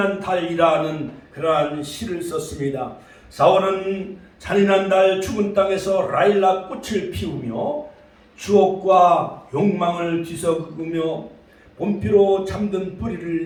달이라는 그러한 시를 썼습니다. 4월은 잔인한 달, 죽은 땅에서 라일락 꽃을 피우며 추억과 욕망을 뒤섞으며 봄비로 잠든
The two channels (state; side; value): identical; both; correlation 1.00